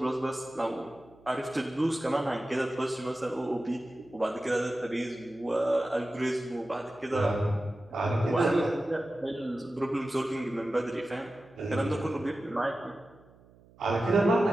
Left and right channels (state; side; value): noise; right; hum, 26 dB below the sound